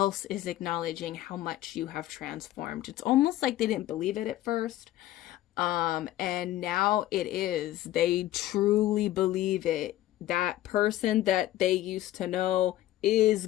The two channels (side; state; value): right; quieter; 14.5 dB